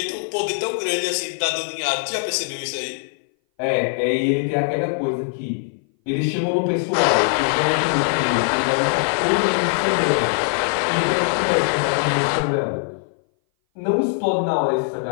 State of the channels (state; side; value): silent; right; 59 dB below the other